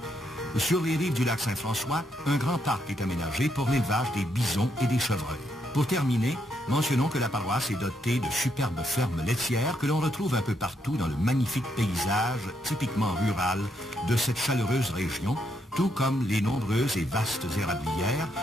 Sur les rives du lac Saint-François, un grand parc est aménagé pour l'élevage des bisons et des chevreuils. Pour terminer, mentionnons que la paroisse est dotée de superbes fermes laitières que l'on retrouve un peu partout dans le magnifique paysage typiquement rural de cette chaleureuse région, tout comme les nombreuses et vastes érablières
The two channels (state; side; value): normal; both; correlation 0.77